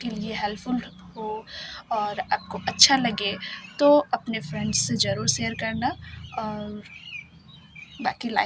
लिए हेल्पफुल हो और आपको अच्छा लगे तो अपने फ्रेंड्स से ज़रूर शेयर करना, और बाकी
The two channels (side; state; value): both; identical; correlation 1.00